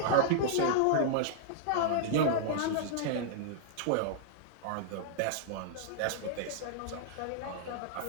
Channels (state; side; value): different; both; correlation -0.02